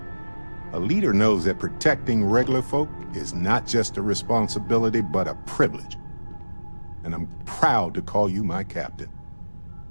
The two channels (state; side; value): inverted; both; correlation -1.00